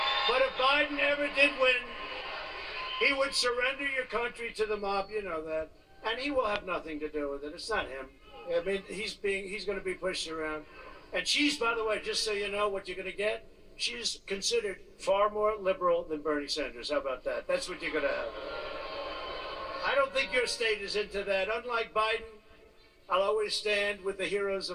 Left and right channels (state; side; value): identical; both; correlation 1.00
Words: But if Biden ever did win, he would surrender your country to the mob, you know that. And he will have nothing to do with it. It's not him. I mean, he's going to be pushed around. And she's, by the way, just so you know what you're going to get, she's considered far more liberal than Bernie Sanders. How about that? That's what you're going to have. I don't think your state is into that. Unlike Biden, I'll always stand with the heroes